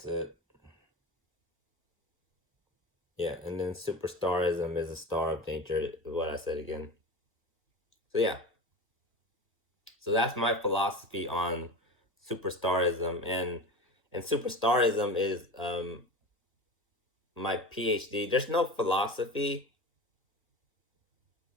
it. Yeah, and then superstarism is a star of nature, what I said again. So yeah. So that's my philosophy on superstarism, and superstarism is my PhD. There's no philosophy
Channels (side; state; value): both; normal; correlation 0.29